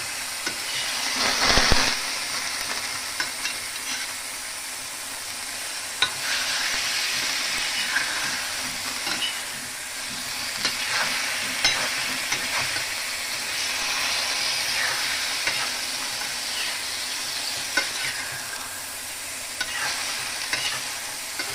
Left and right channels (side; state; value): both; identical; correlation 1.00